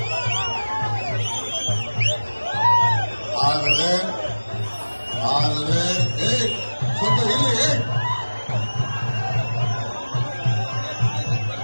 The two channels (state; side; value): inverted; both; correlation -1.00